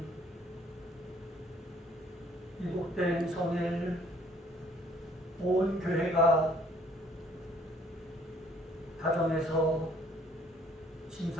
이복된 성일 온 교회가 가정에서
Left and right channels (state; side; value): normal; both; correlation 0.60